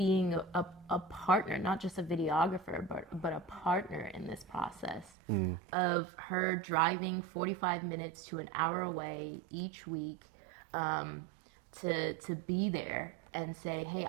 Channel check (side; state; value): left; drops out; at 5.1 s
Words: a partner, not just a videographer, but a partner in this process of her driving 45 minutes to an hour away each week to be there and say, hey,